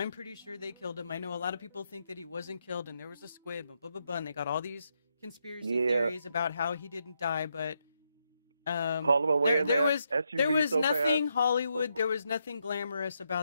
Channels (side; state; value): both; inverted; correlation -0.81